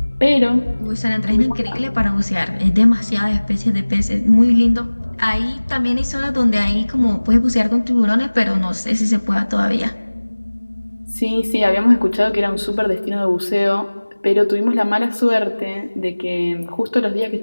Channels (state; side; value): inverted; both; correlation -1.00